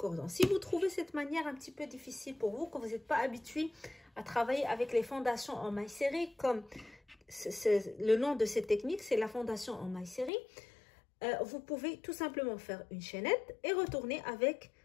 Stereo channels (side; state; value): right; drops out; at 10.3 s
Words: Si vous trouvez cette manière un petit peu difficile pour vous, que vous n'êtes pas habitué à travailler avec les fondations en mailles serrées, comme le nom de cette technique, c'est la fondation en mailles serrées, vous pouvez tout simplement faire une chaînette et retourner avec